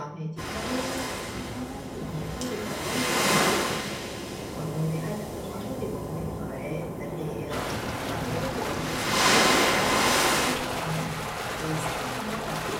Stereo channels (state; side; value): identical; both; correlation 1.00